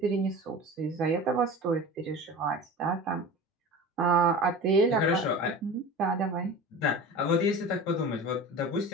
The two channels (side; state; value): both; normal; correlation 0.34